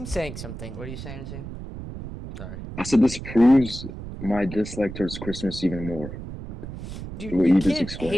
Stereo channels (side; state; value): right; noise; rumble, 10 dB below the sound